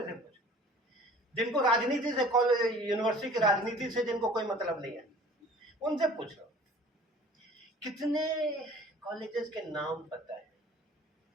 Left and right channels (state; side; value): normal; both; correlation 0.48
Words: से पूछो, जिनको राजनीति से, कॉलेज यूनिवर्सिटी की राजनीति से जिनको कोई मतलब नहीं है, उनसे पूछो कितने कॉलेजेस के नाम पता है।